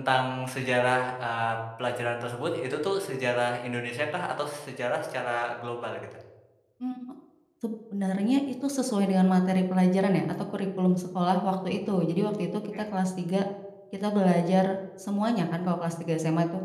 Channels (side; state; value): both; identical; correlation 1.00